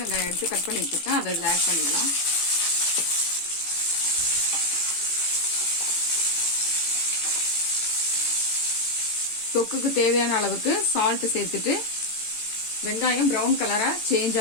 வெங்காயம் எடுத்து கட் பண்ணி வச்சிருக்கேன். அதை இதில் ஆட் பண்ணிடலாம். தொக்குக்கு தேவையான அளவுக்கு சால்ட் சேர்த்துட்டு வெங்காயம் ப்ரௌன் கலரா சேஞ்ச்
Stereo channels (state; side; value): late; right; 18 ms